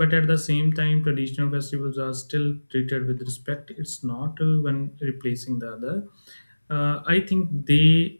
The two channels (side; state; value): both; inverted; correlation -1.00